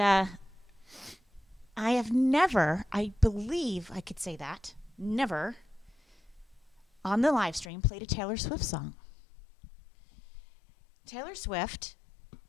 have never, I believe I could say that, never on the live stream played a Taylor Swift song. Taylor Swift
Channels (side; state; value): right; drops out; at 7.7 s